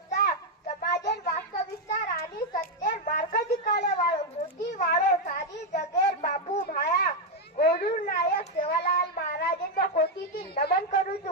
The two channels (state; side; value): normal; both; correlation 0.03